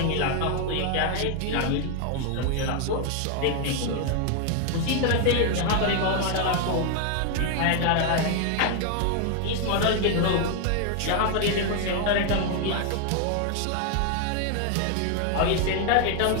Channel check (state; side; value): different; both; correlation 0.00